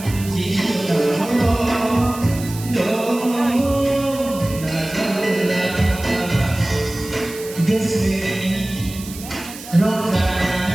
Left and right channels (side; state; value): right; noise; hiss, 14 dB below the sound